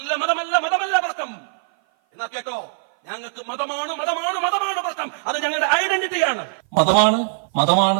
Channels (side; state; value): left; silent; 56 dB below the other